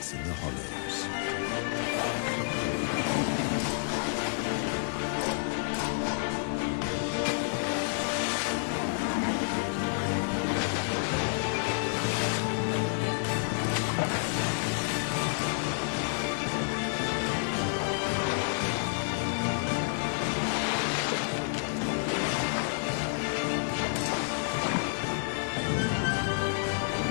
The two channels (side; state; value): right; silent; digital silence